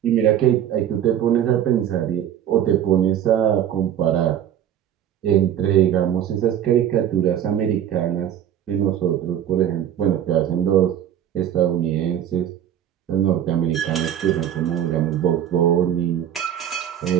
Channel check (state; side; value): quieter; left; 10.3 dB